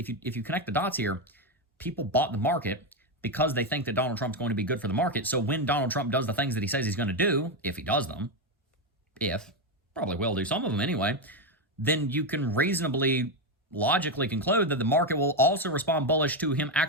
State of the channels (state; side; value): normal; both; correlation 0.08